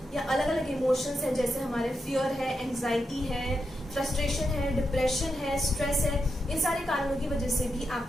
या अलग अलग इमोशंस हैं जैसे हमारे फियर है, एंग्जाइटी है, फ्रस्ट्रेशन है, डिप्रेशन है, स्ट्रेस है। इन सारे कारणों की वजह से भी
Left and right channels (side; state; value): both; normal; correlation 0.86